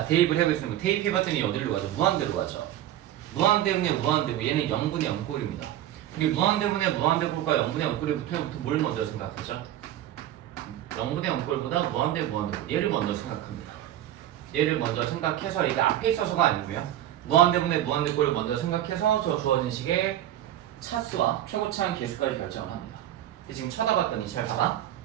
대입을 해보겠습니다. 대입해봤더니 어디로 가죠? 무한대로 가죠. 무한대분의 무한대고 얘는 0분의 0꼴입니다. 우리 무한대분의 무한대꼴과 0분의 0꼴부터 뭘 먼저 생각하죠? 0분의 0꼴보다 무한대 무한대꼴 얘를 먼저 생각합니다. 얘를 먼저 생각해서 이게 앞에 있어서가 아니고요. 무한대분의 무한대꼴을 먼저 생각해서 저 주어진 식의 차수와 최고차항 계수까지 결정을 합니다. 지금 쳐다봤더니 잘 봐봐.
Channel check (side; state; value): left; quieter; 12.6 dB